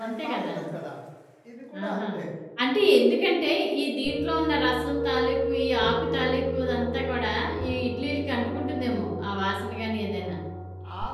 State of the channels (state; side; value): identical; both; correlation 1.00